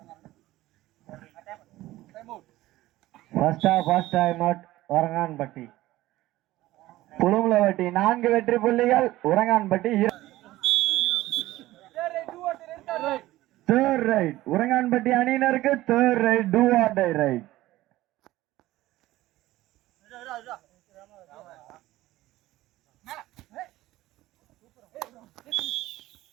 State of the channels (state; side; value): quieter; left; 16.6 dB